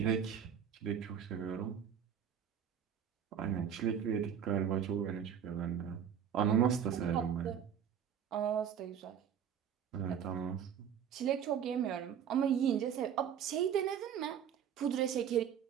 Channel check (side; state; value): left; quieter; 8.5 dB